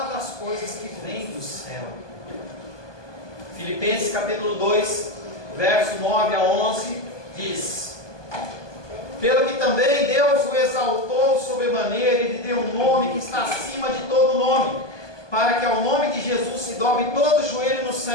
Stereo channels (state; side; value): late; right; 1.2 ms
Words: das coisas que vêm do céu. Filipenses capítulo 2, verso 9 a 11, diz: pelo que também Deus o exaltou sobremaneira e lhe deu um nome que está acima de todo nome, para que ao nome de Jesus se dobre todo o joelho nos